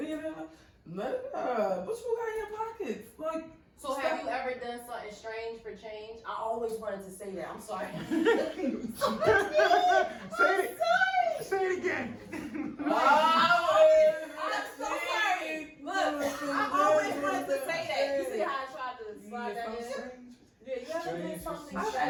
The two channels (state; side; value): identical; both; correlation 1.00